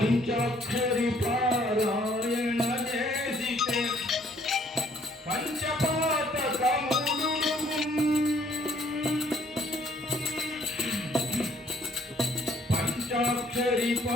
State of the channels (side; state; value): both; normal; correlation 0.63